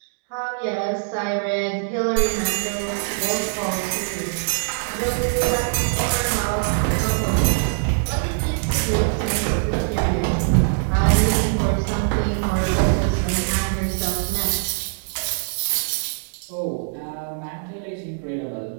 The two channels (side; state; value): left; silent; digital silence